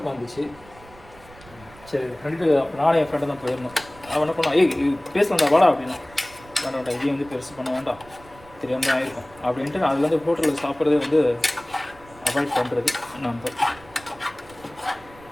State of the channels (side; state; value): right; noise; rumble, 23 dB below the sound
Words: சரி ஃப்ரெண்டு, நானே என் ஃப்ரெண்டை தான் போயிருந்தோம். அவன் என்ன பண்ணான், பேசலாம்டா வாடா அப்படின்னா. வேண்டாம்டா இதையும் வந்து பெருசு பண்ண வேண்டாம், தெரியாமல் தான் ஆயிருக்கும் அப்படின்ட்டு நான் அதுலேருந்து ஹோட்டலில் சாப்பிட்றதே வந்து அவாய்ட் பண்ணுறது. நம்ம